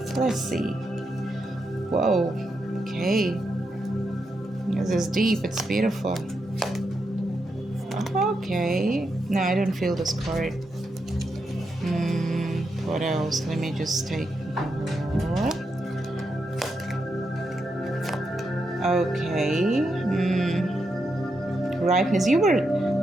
Let's see. Whoa. Okay. This is deep. It's beautiful. Okay. No, I don't feel this card. What else? Let me just take more. Okay. Ripeness. You were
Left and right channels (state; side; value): normal; both; correlation 0.84